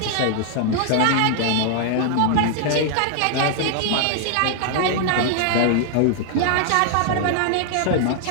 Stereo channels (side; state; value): both; different; correlation 0.00